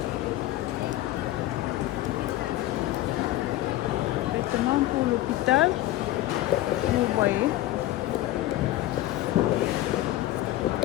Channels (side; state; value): right; quieter; 15.4 dB